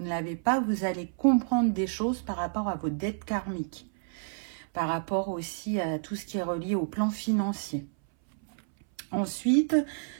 ne l'avez pas, vous allez comprendre des choses par rapport à vos dettes karmiques. Par rapport aussi à tout ce qui est relié au plan financier. Ensuite,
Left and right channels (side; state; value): left; silent; 58 dB below the other